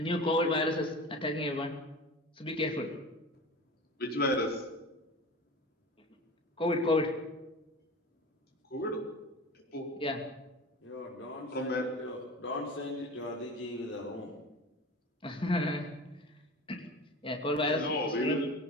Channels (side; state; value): both; normal; correlation 0.34